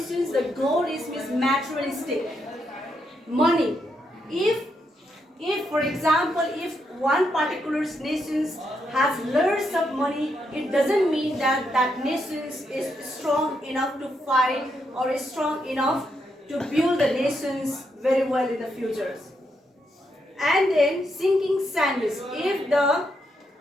the goal is materialistic. Money. If for example, if one particular nation has lots of money, it doesn't mean that that nation is strong enough to fight or is strong enough to build the nations very well in the future. And then sinking sand is if the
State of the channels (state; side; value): normal; both; correlation 0.80